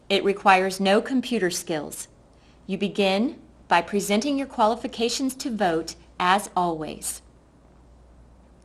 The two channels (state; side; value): identical; both; correlation 1.00